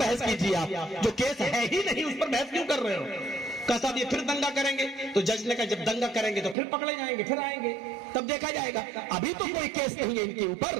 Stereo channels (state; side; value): drops out; left; at 6.6 s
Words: کیجیے، آپ جو کیس ہے ہی نہیں اس پر بحث کیوں کر رہے ہو؟ کہا صاحب یہ پھر دنگا کریں گے. تو جج نے کہا جب دنگا کریں گے تو پھر پکڑے جائیں گے، پھر آئیں گے، تب دیکھا جائے گا، ابھی تو کوئی کیس نہیں ہے ان کے اوپر.